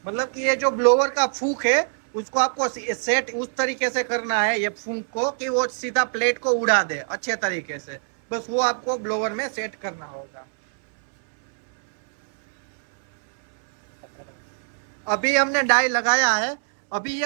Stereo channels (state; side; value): silent; left; 63 dB below the other